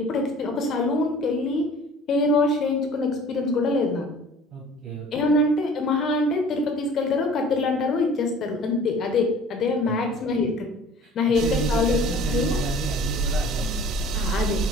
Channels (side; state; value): both; normal; correlation 0.47